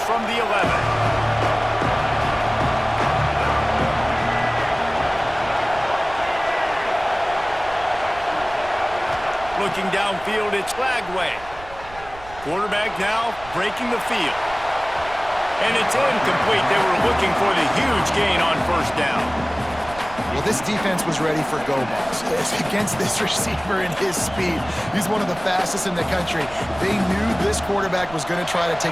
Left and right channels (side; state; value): right; noise; rumble, 18 dB below the sound